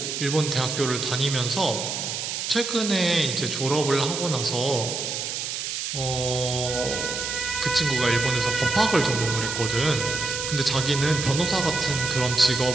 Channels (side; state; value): right; noise; hiss, 4 dB below the sound